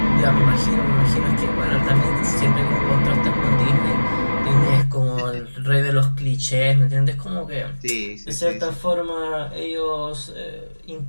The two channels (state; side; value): inverted; both; correlation -1.00